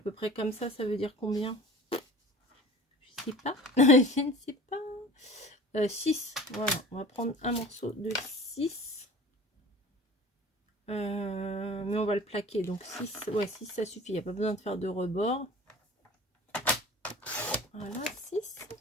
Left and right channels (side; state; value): both; normal; correlation 0.42